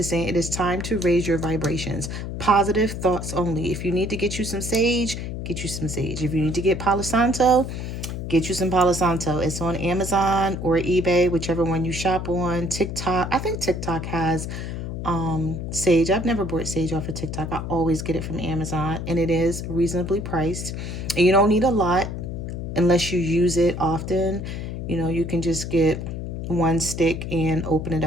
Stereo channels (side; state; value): left; noise; hum, 6 dB below the sound